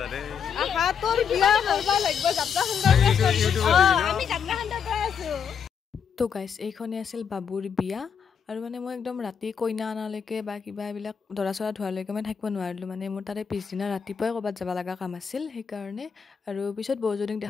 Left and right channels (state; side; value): quieter; right; 7.0 dB